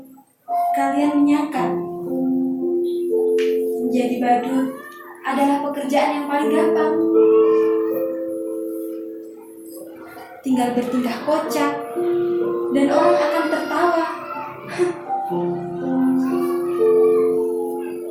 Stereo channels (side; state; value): both; identical; correlation 1.00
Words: kalian menyangka menjadi badut adalah pekerjaan yang paling gampang. Tinggal bertingkah kocak dan orang akan tertawa.